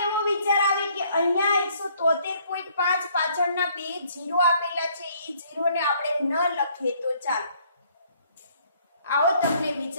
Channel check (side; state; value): both; inverted; correlation -0.63